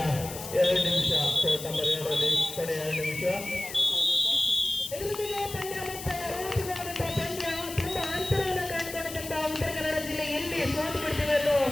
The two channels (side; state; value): left; noise; hiss, 11 dB below the sound